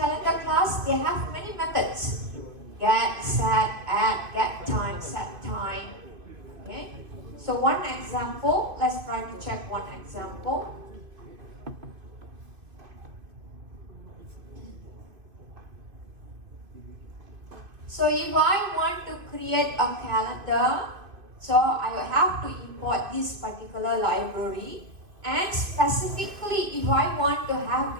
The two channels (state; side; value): late; left; 2.4 ms